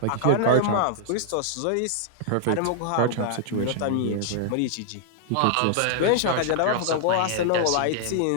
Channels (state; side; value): different; both; correlation -0.01